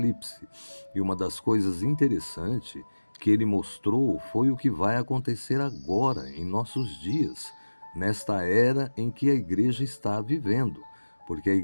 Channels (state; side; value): inverted; both; correlation -1.00